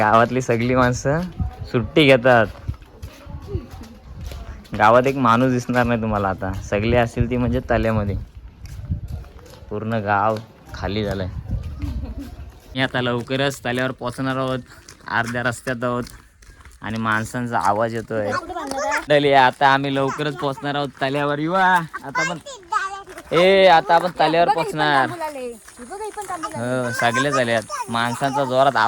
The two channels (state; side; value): identical; both; correlation 1.00